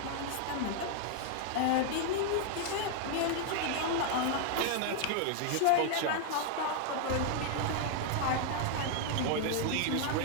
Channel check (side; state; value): both; different; correlation 0.00